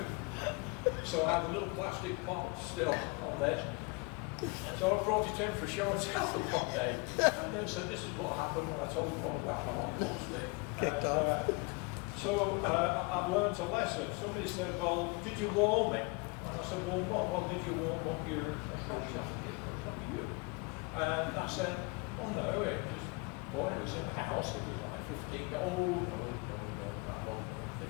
So I had a little plastic pot still on this. So I brought it in for show and tell one day. And they said, this is what happened when I told you all about my lollipop stick. So I've learned a lesson. Somebody said, well, did you warm it? And I said, warm what? Well, did you warm up your jacket? What you? And I said, oh no, it just, boy, it was in the house. It was like 15, no, that wasn't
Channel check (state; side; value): quieter; right; 29.3 dB